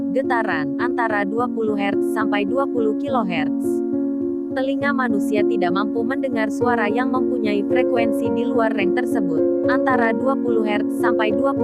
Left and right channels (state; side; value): identical; both; correlation 1.00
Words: getaran antara 20 Hz sampai 20 kHz. Telinga manusia tidak mampu mendengar suara yang mempunyai frekuensi di luar range tersebut, antara 20 Hz sampai 20